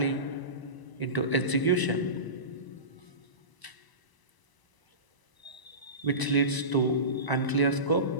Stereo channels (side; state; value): right; late; 1.0 ms